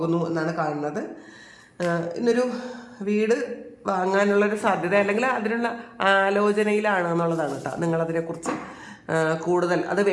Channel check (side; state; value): both; identical; correlation 1.00